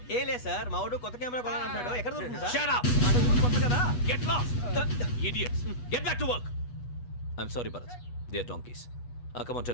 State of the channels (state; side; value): late; right; 8.2 ms